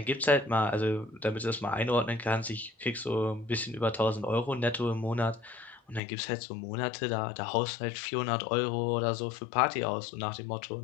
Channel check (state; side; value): drops out; right; at 6.0 s